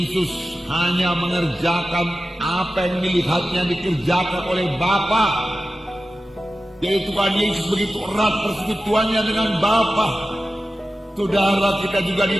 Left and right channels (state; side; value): normal; both; correlation 0.94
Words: hanya mengerjakan apa yang dilihatnya dikerjakan oleh Bapa. Jadi Tuhan Yesus begitu erat persekutuannya dengan Bapa. Saudara, kita juga